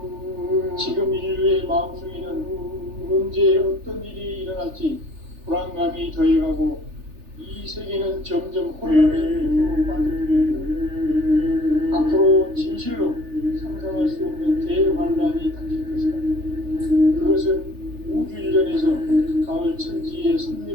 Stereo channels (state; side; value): late; left; 3.3 ms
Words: 지금 인류의 마음속에는 언제 어떤 일이 일어날지 불안감이 더해가고 이 세계는 점점 혼란의 늪으로 빠져들고 앞으로 진실로 상상할 수 없는 대환란이 닥칠 것이다. 그것은 우주 일전에서 가을 천지에